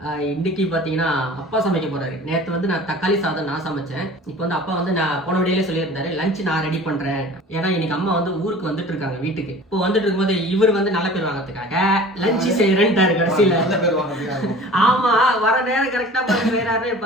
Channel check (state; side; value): normal; both; correlation 0.43